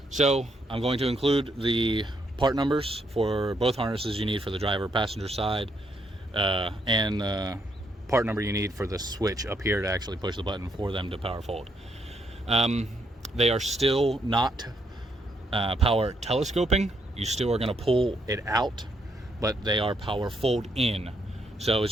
So I'm going to include the part numbers for both harnesses you need for the driver passenger side, and the part number you need for the switch up here to actually push the button for them to power fold. They are still not power telescoping. You still are going to pull it out, but they are power fold in. So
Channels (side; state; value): both; normal; correlation 0.75